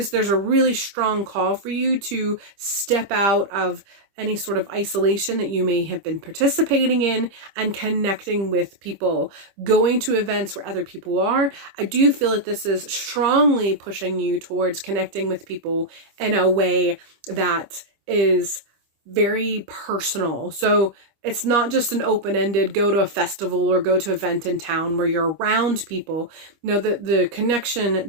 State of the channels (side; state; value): left; late; 25 ms